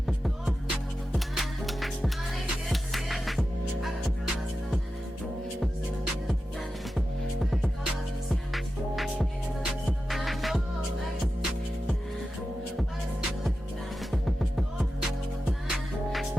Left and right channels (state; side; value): normal; both; correlation 0.92